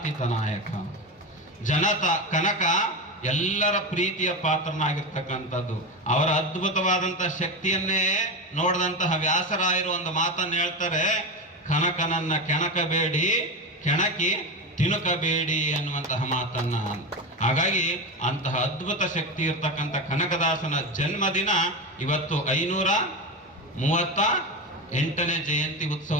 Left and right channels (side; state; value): both; normal; correlation 0.18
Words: ನಾಯಕ, ಕನಕ ಎಲ್ಲರ ಪ್ರೀತಿಯ ಪಾತ್ರನಾಗಿರ್ತಕ್ಕಂಥದ್ದು. ಅವರ ಅದ್ಭುತವಾದಂತಹ ಶಕ್ತಿಯನ್ನೇ ನೋಡಿದಂತಹ ವ್ಯಾಸರಾಯರು ಒಂದು ಮಾತನ್ನು ಹೇಳ್ತಾರೆ, ಕನಕನನ್ನ ಕೆಣಕಬೇಡಿ, ಕೆಣಕಿ ತಿನುಕಬೇಡಿ ಅನ್ನುವಂತಹ ಮಾತನ್ನ. ಹಾಗಾಗಿ ಅಂತಹ ಅದ್ಭುತ ಶಕ್ತಿ ಇರ್ತಕ್ಕಂಥ ಕನಕದಾಸನ ಜನ್ಮದಿನ ಇವತ್ತು 538ನೇ ಜಯಂತಿ